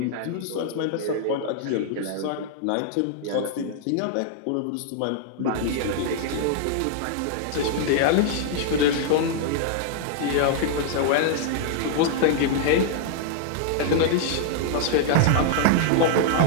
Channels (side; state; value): both; different; correlation -0.01